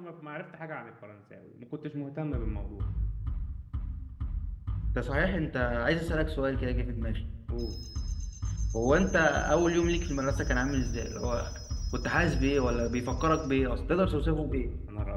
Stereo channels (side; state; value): both; identical; correlation 1.00